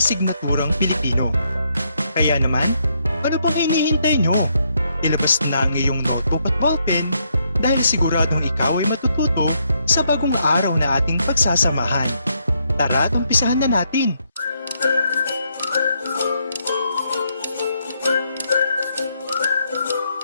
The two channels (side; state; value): both; inverted; correlation -0.75